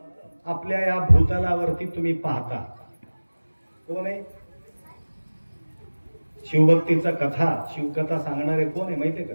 आपल्या या भूतलावरती तुम्ही पाहता. कोण आहे? शिवभक्तीचा कथा शिवकथा सांगणारे कोण आहे माहितीये का?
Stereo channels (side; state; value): both; inverted; correlation -1.00